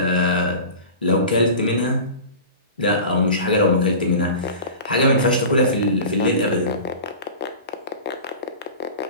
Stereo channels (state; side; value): inverted; both; correlation -0.35